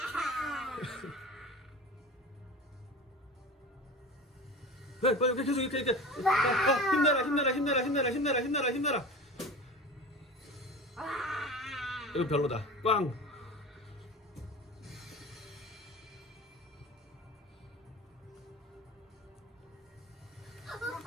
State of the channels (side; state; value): both; normal; correlation 0.33